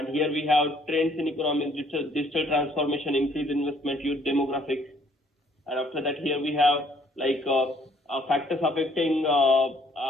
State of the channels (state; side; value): normal; both; correlation 0.63